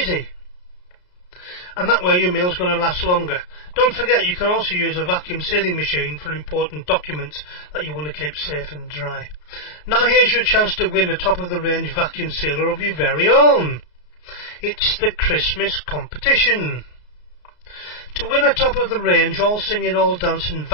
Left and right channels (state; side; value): late; right; 33 ms